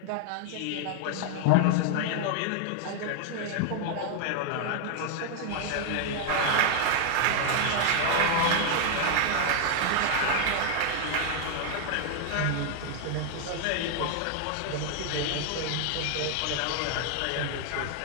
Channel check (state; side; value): different; both; correlation 0.00